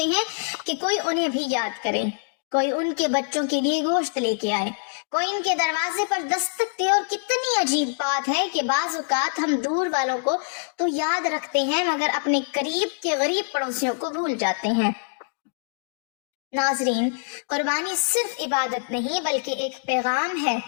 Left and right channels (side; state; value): right; silent; digital silence